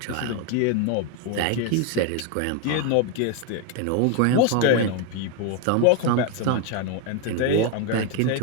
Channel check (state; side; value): different; both; correlation 0.01